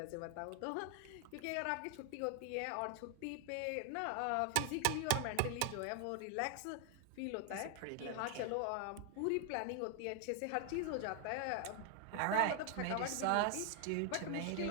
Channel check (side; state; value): both; different; correlation 0.00